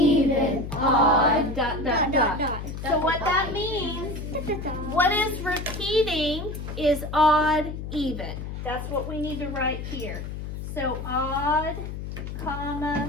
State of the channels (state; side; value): noise; left; hum, 7 dB below the sound